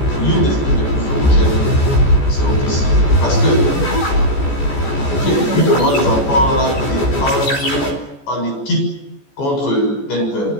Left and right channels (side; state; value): right; late; 14 ms